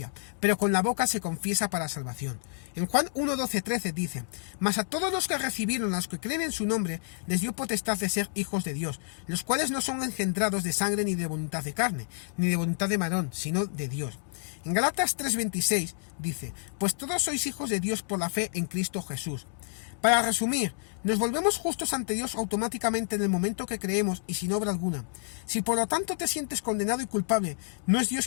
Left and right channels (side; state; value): right; silent; digital silence